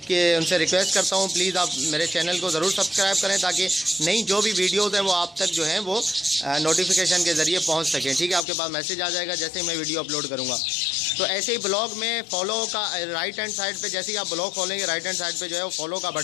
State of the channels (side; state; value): right; drops out; at 8.5 s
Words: रिक्वेस्ट करता हूँ प्लीज़ आप मेरे चैनल को ज़रूर सब्सक्राइब करें ताकि नई जो भी वीडियोज़ हैं वो आप तक जो है वो नोटिफिकेशन के ज़रिए पहुँच सकें। ठीक है, आपके पास मैसेज आ जाएगा जैसे ही मैं वीडियो अपलोड करूँगा। तो ऐसे ही ब्लॉग में फॉलो का राइट हैंड साइड पे जैसे ही आप ब्लॉग खोलेंगे राइट हैंड साइड पे जो है वो फॉलो का